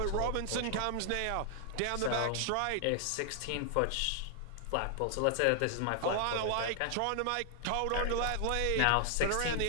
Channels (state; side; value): different; both; correlation 0.00